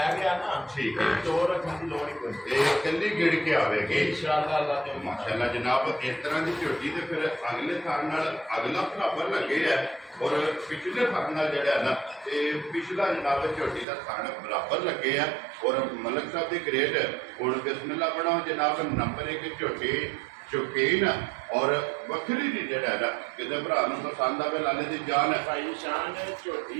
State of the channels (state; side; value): drops out; left; at 13.9 s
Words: ਗਿਆ ਨਾ ਠੀਕ ਹੈ। ਦੋ ਰੱਖਣ ਦੀ ਲੋੜ ਹੀ ਕੋਈ ਨਹੀਂ। ਇਹ ਕੱਲੀ ਗਿੜ ਕੇ ਆਵੇਗੀ ਇਨਸ਼ਾਅੱਲਾ ਅੱਲਾ ਤੇ ਮਾਸ਼ਾਅੱਲਾ ਜਨਾਬ ਇਸ ਤਰ੍ਹਾਂ ਦੀ ਝੋਟੀ ਤੇ ਫਿਰ ਅਗਲੇ ਥਾਂ ਨਾਲ ਅਗਲਾ ਬਰਾਬਰ ਲੱਗੇ ਹੈ ਔਰ ਪਿਛਲੇ ਥਾਂ ਨਾਲ ਜਿਹੜਾ ਹੈ ਨਾ ਇਹ ਪਿਛਲਾ ਜਨਾਬ ਝੋਟੀ ਦਾ ਥਾਂ ਬਰਾਬਰ ਲੱਗੇ ਆ ਔਰ ਮਲਕ ਸਾਹਿਬ ਦੀ ਗ੍ਰੇਡ ਹੁਣ ਬਿਸਮਿਲ੍ਲਾ ਬਣਾਓ ਜਨਾਬ ਨੰਬਰ 1 ਝੋਟੀ ਸ਼ੌਕੀਨ ਔਰ ਵੱਖਰੀ ਦੀ ਜਿਹੜਾ ਹੈ ਨਾ ਕਿਸੇ ਭਰਾ ਨੂੰ ਪਸੰਦ ਆਵੇ ਲਾਲੇ ਦੀ ਜਾਨ ਹੈ ਭਾਈ ਸ਼ਾਨ